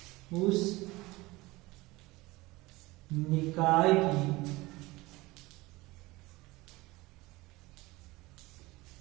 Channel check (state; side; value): quieter; left; 21.1 dB